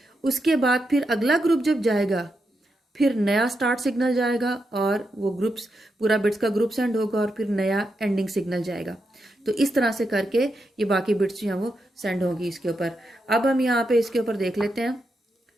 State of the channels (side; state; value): both; normal; correlation 0.85